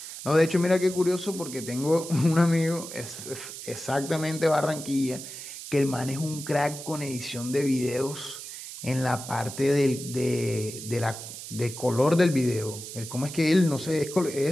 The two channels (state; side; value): noise; right; hiss, 11 dB below the sound